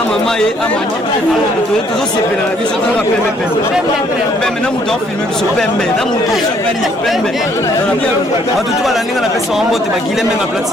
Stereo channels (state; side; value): normal; both; correlation 0.65